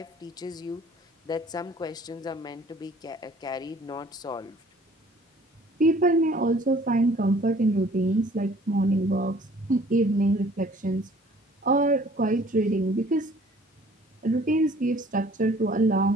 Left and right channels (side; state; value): both; normal; correlation 0.54